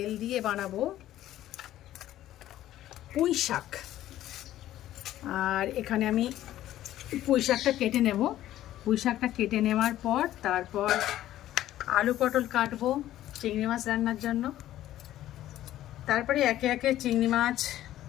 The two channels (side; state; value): right; quieter; 13.4 dB